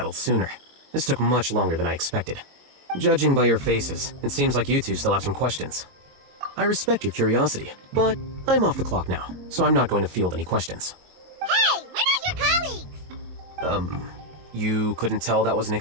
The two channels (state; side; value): late; left; 22 ms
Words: sooner. This took much longer than I expected. Judging by your faces, it seems like you two still have some questions. I respect your curiosity, but I'm off the clock now, so I'm not going to field any questions. Hey, we're not your colleagues! You couldn't tell that was an